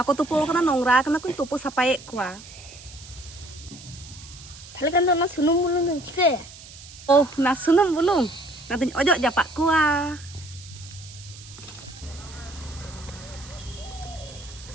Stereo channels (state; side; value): noise; right; hiss, 18 dB below the sound